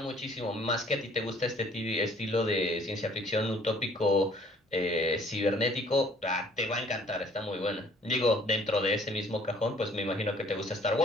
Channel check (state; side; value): normal; both; correlation 0.57